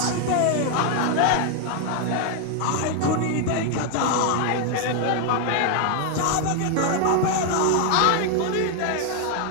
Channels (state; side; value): different; both; correlation 0.00